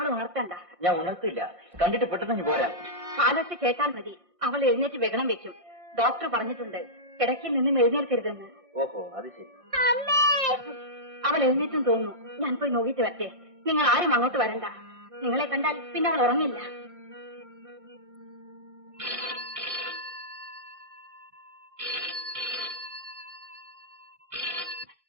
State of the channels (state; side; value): late; left; 1.6 ms